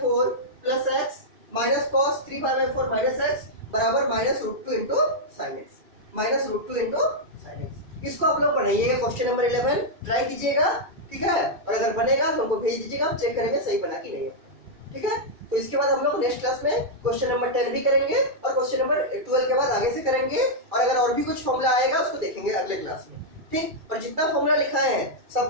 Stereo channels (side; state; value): left; late; 2.3 ms